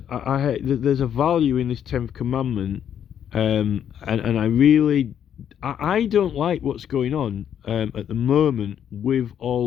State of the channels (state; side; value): quieter; right; 9.2 dB